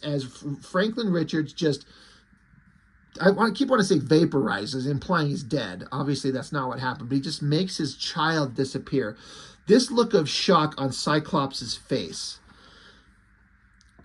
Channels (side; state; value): both; identical; correlation 1.00